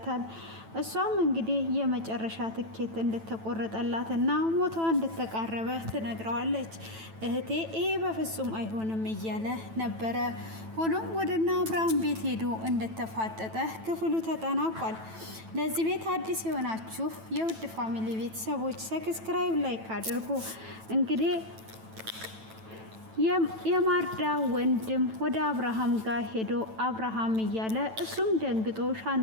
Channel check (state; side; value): late; left; 9.1 ms